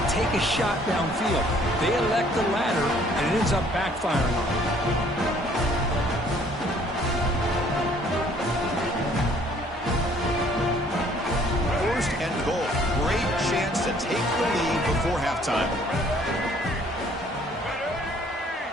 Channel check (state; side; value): normal; both; correlation 0.59